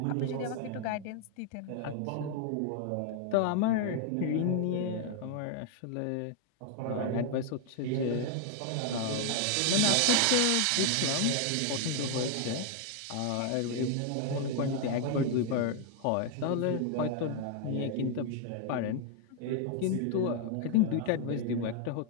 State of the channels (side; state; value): both; different; correlation 0.00